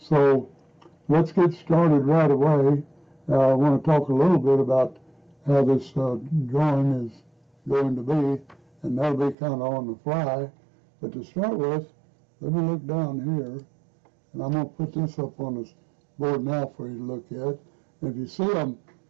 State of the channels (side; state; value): left; drops out; at 9.3 s